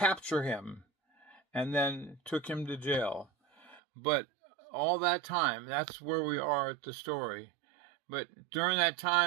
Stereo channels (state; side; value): drops out; left; at 3.8 s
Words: him, and then took him to jail. But all that time, that's where we are at the story. But during that